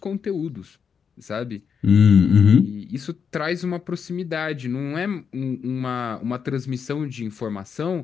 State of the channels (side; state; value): right; quieter; 6.6 dB